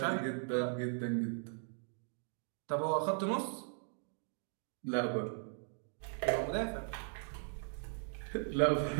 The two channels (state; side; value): silent; left; 52 dB below the other